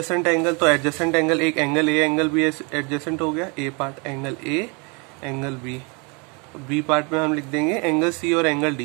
angle, तो एडजेसेंट एंगल एक angle A angle B adjacent हो गया। A part angle A angle B, B part में हम लिख देंगे एंगल C और एंगल D,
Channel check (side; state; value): left; quieter; 31.9 dB